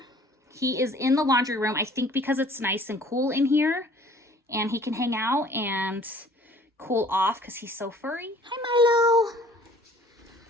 he is in the laundry room. I think because it's nice and cool in here and he can hang out and cool off because he's so furry. Hi, Milo.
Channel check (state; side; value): normal; both; correlation 0.53